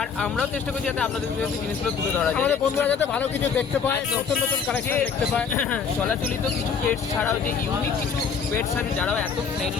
আমরাও চেষ্টা করছি যাতে আপনাদের কাছে জিনিসগুলো তুলে ধরা যায়, আমাদের বন্ধুরা যাতে ভালো কিছু দেখতে পায়, নতুন নতুন কালেকশন দেখতে পায়। চলাচলিত কিছু পেটস ছাড়াও যে ইউনিক কিছু পেটস আছে যারাও এত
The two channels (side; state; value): right; quieter; 6.3 dB